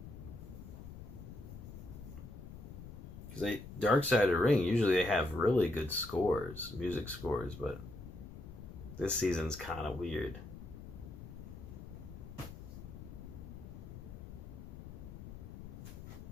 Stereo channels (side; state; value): left; noise; rumble, 12 dB below the sound